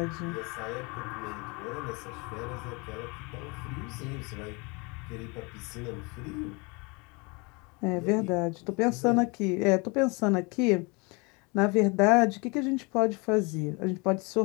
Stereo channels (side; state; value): right; quieter; 29.2 dB